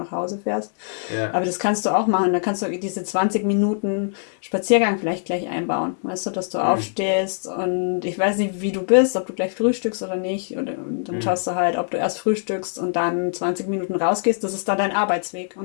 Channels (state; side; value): silent; right; digital silence